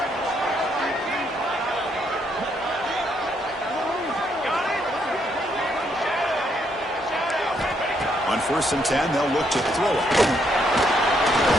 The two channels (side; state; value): both; normal; correlation 0.74